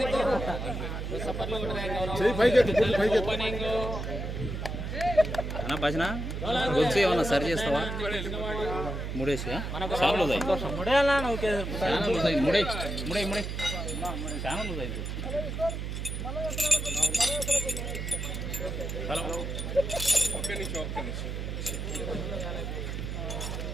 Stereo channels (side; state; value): right; noise; hum, 4 dB below the sound